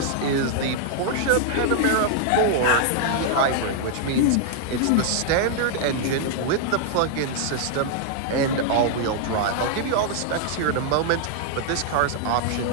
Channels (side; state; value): both; different; correlation -0.01